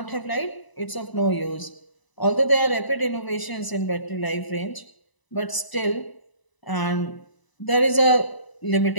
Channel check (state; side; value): late; right; 1.0 ms